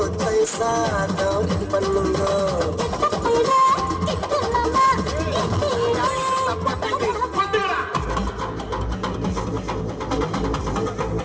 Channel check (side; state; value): both; identical; correlation 1.00